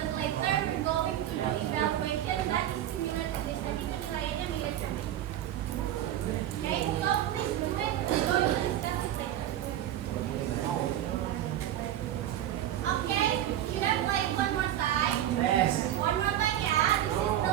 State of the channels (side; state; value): left; quieter; 12.0 dB